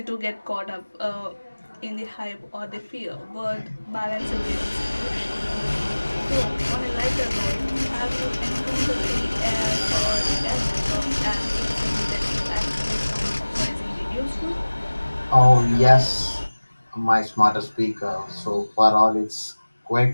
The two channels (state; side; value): inverted; both; correlation -1.00